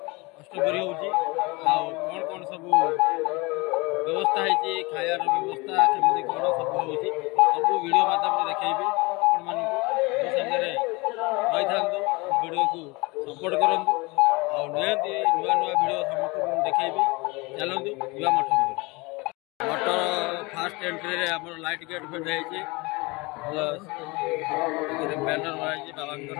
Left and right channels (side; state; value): right; quieter; 25.4 dB